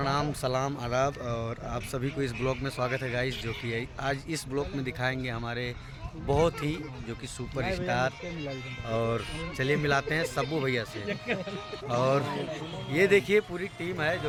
सलाम, आदाब और आप सभी को इस ब्लॉग में स्वागत है गाइस। जो कि आज इस ब्लॉग में दिखाएंगे हमारे बहुत ही जो कि सुपर स्टार। और चलिए मिलाते हैं सब्बू भैया से। और ये देखिए पूरी टीम है,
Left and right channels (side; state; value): both; identical; correlation 1.00